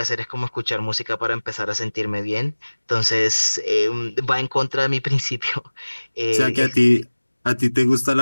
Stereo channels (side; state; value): both; inverted; correlation -1.00